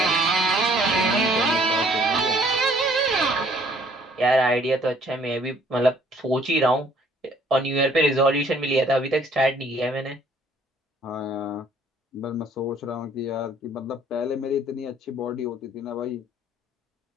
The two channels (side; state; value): both; normal; correlation 0.60